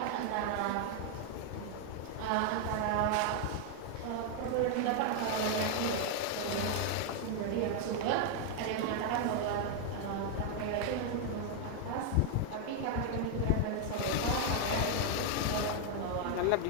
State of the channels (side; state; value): both; different; correlation 0.00